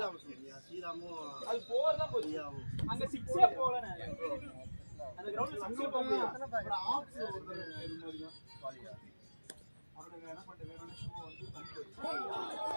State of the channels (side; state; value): both; inverted; correlation -1.00